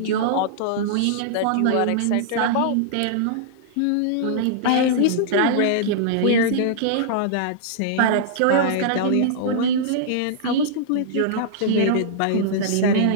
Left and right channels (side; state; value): both; different; correlation -0.02